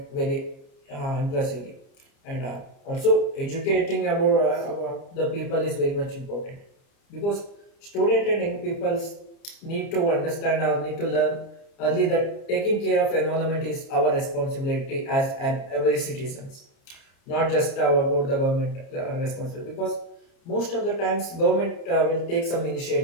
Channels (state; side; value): late; right; 30 ms